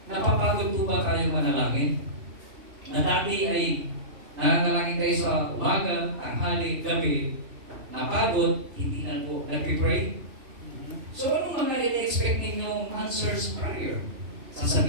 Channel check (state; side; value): late; left; 2.5 ms